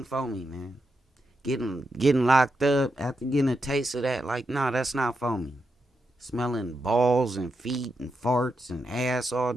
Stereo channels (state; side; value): normal; both; correlation 0.86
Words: for me, man. Getting locked up after getting a taste of that, like, nah, that's not for me. Smelling balls and feet and farts and ass all